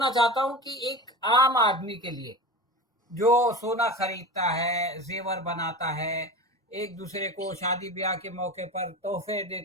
चाहता हूँ कि एक आम आदमी के लिए जो सोना खरीदता है, जेवर बनाता है, एक दूसरे को शादी ब्याह के मौके पर तोहफे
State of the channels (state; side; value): normal; both; correlation 0.30